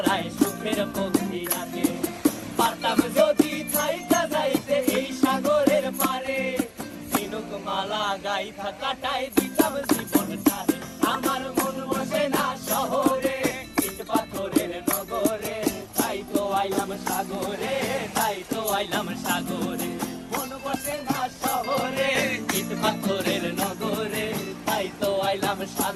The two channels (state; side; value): identical; both; correlation 1.00